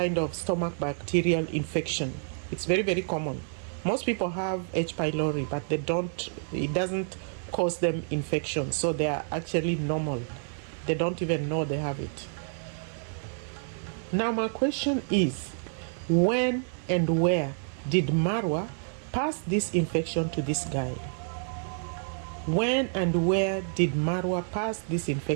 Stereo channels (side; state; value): left; silent; 58 dB below the other